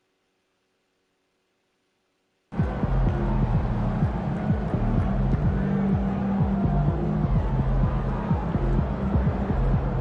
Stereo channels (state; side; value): identical; both; correlation 1.00